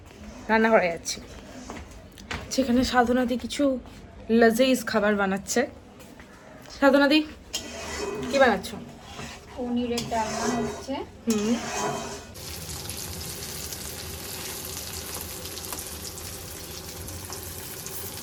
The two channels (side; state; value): both; identical; correlation 1.00